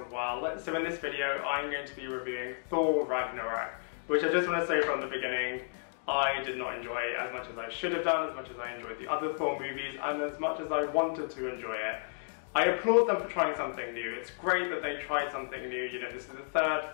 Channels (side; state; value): right; silent; digital silence